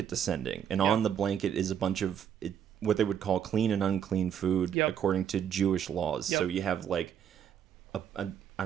descending, and on the blanket is a bunch of what they would call clean and unclean food according to Jewish laws. So you have like I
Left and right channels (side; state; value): left; quieter; 8.9 dB